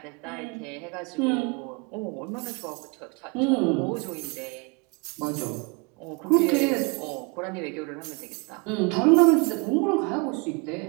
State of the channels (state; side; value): quieter; left; 30.6 dB